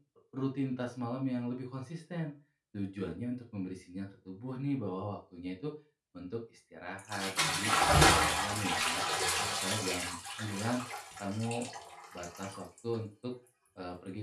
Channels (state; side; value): identical; both; correlation 1.00